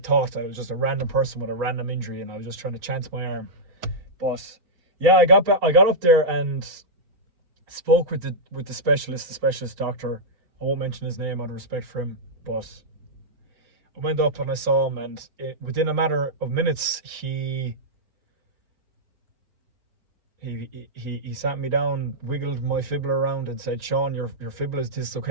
I was just a random person with a random injury and I was just trying to chance my arm. But yeah, I got up there and spoke with the specialist doctor. I won't mention his name out of respect for him, but I went up and I saw him, and within a matter of minutes, he sat me down, wiggled my fibula around, and said, "Sean, your fibula is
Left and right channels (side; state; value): left; late; 4.4 ms